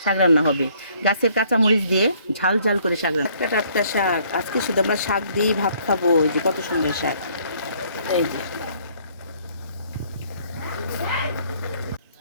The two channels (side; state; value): both; inverted; correlation -0.62